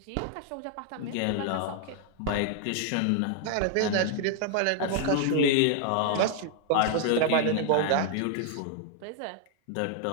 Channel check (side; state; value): both; different; correlation 0.00